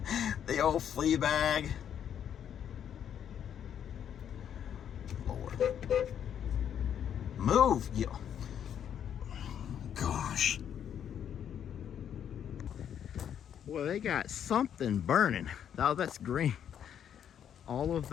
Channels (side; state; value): right; quieter; 9.1 dB